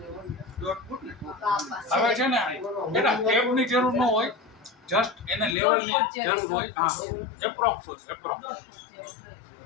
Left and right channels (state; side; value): drops out; right; at 5.6 s